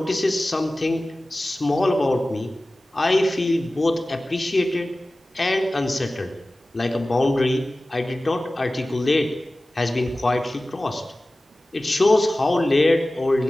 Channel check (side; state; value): both; normal; correlation 0.97